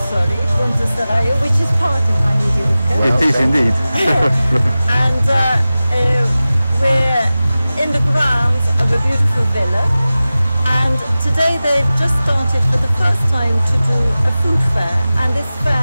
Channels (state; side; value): inverted; both; correlation -0.96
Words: Sorry, Ponte Seraglio, which is part of Bagni di Lucca. It is indeed. And we're in the grounds of a beautiful villa. And today they've just started for the first time to do a food fair. And this